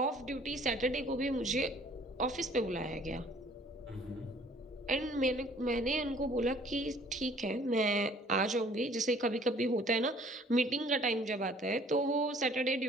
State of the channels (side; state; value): both; normal; correlation 0.56